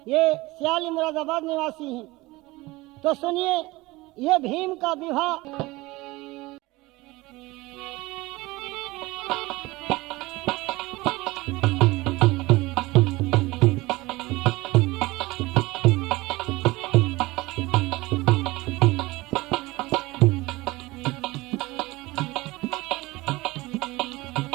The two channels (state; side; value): quieter; left; 20.9 dB